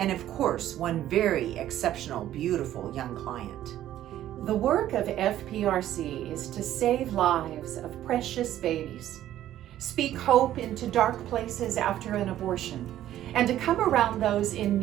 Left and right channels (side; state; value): left; quieter; 12.6 dB